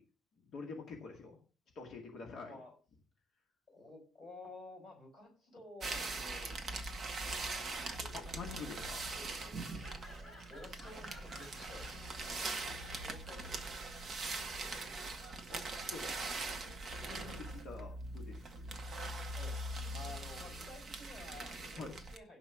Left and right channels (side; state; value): both; normal; correlation 0.70